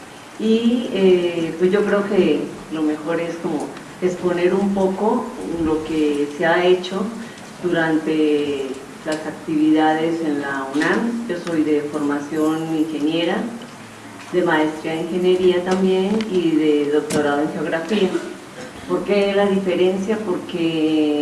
y pues yo creo que lo mejor es como exponer un poco lo que se ha hecho durante las actividades en la UNAM. Yo soy de formación ingeniera, de maestría en ingeniería también y de doctorado en geografía. ¿Por qué la diferencia?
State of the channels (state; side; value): identical; both; correlation 1.00